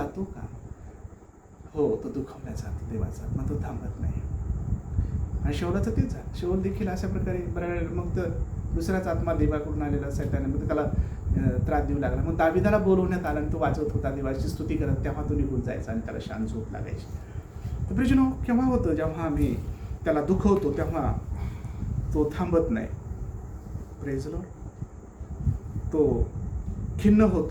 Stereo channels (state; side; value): identical; both; correlation 1.00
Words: का? हो, तो दुखावल्या जातो देवाचा, मग तो थांबत नाही. आणि शौलाचं तेच झालं. शौल देखील अशा प्रकारे बऱ्याच मग तर दुसराच आत्मा देवाकडून आलेला सैताने मग त्याला त्रास देऊ लागला. मग दाविदाला बोलवण्यात आला आणि तो वाजवत होता, देवाची स्तुती करत, तेव्हा तो निघून जायचा आणि त्याला शांत झोप लागायची. तर प्रियजनो, केव्हा होतं जेव्हा आम्ही त्याला दुखवतो तेव्हा तो थांबत नाही. Praise Lord. तो खिन्न